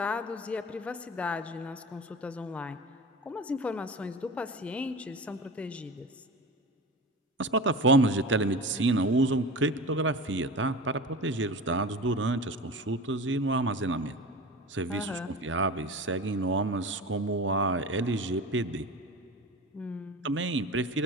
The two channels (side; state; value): both; normal; correlation 0.32